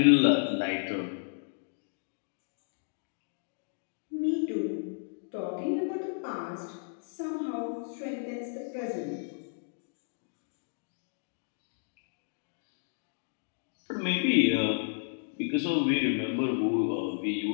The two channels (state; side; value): silent; right; digital silence